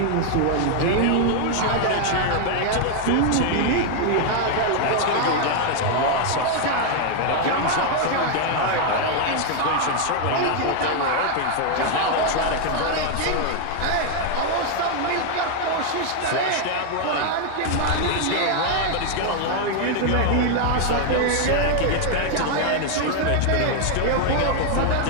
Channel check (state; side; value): different; both; correlation 0.00